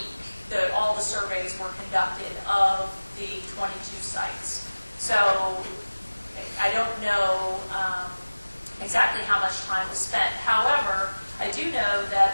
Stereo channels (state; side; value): inverted; both; correlation -1.00